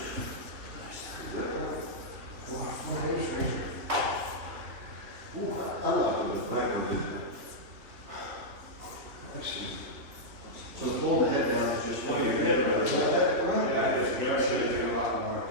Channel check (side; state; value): left; late; 3.4 ms